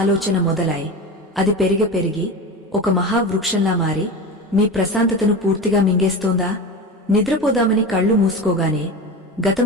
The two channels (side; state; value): both; normal; correlation 0.27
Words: మొదలై అది పెరిగి ఒక మహావృక్షంలా మారి మీ ప్రశాంతతను పూర్తిగా మింగేస్తోందా? నిద్రపోదామని కళ్ళు మూసుకోగానే గతం